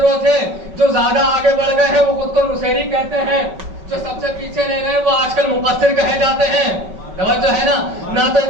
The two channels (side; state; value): left; late; 5.3 ms